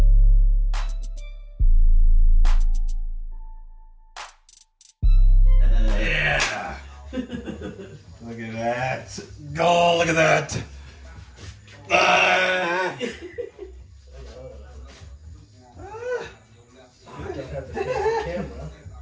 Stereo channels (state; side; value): identical; both; correlation 1.00